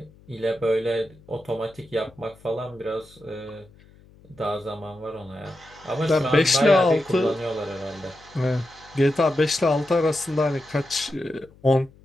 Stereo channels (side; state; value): left; noise; hum, 26 dB below the sound